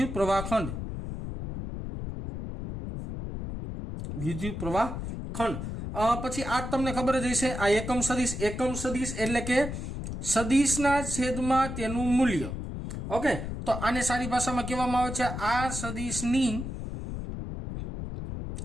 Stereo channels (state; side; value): noise; left; rumble, 6 dB below the sound